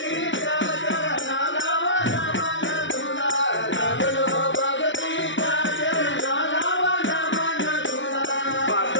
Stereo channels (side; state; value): right; late; 0.55 ms